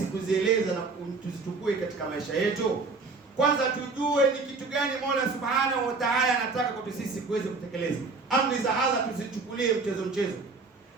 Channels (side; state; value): left; quieter; 4.1 dB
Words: kuzieleza na tuzitukue katika maisha yetu. Kwanza tujue ni kitu gani Mola Subhanahu wa Ta'ala anataka kwa sisi kuweza kutekeleza. Amri za Allah tusichukulie mchezo.